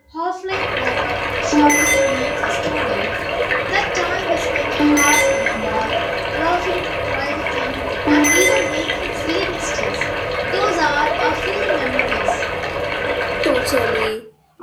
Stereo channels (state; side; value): identical; both; correlation 1.00